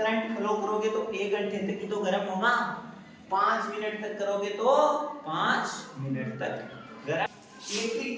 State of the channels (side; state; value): both; identical; correlation 1.00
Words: फ्लो करोगे तो 1 घंटे तक ही तो गर्म होगा, 5 मिनट तक करोगे तो 5 मिनट तक गर्म। इलेक्ट्रिक